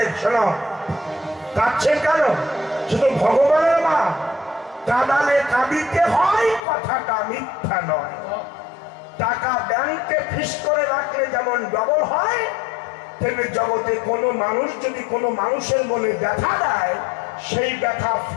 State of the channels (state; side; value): drops out; right; at 6.6 s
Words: শোনো, কাঁদছেন কেন? শুধু ভগবানের মা, কাঁদালে কাঁদিতে হয়, কথাটা মিথ্যা নয়। টাকা ব্যাংকে ফিস করে রাখলে যেমন ডবল হয়, তেমনি জগতে কোনো মানুষ যদি কোনো মানুষের মনে ব্যথা দেয়, সেই ব্যথা